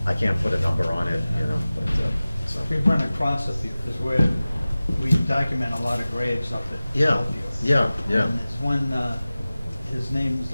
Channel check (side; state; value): both; inverted; correlation -0.97